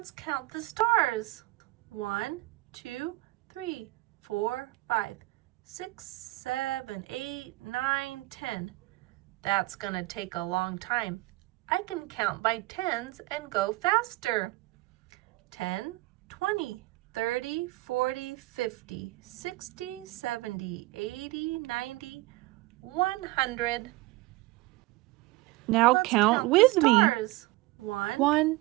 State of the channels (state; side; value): quieter; left; 20.4 dB